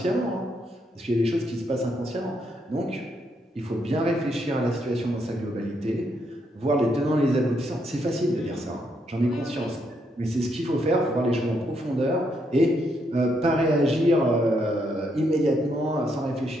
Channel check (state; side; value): normal; both; correlation 0.76